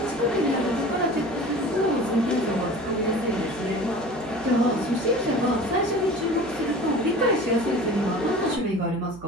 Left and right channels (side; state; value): right; noise; hum, 20 dB below the sound